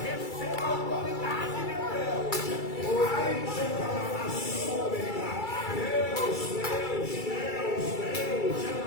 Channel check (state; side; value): late; right; 2.3 ms